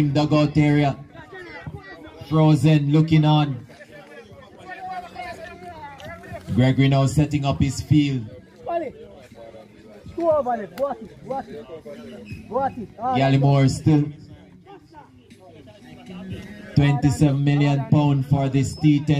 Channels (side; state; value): both; identical; correlation 1.00